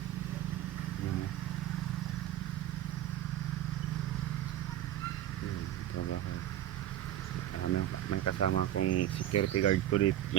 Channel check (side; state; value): left; quieter; 12.6 dB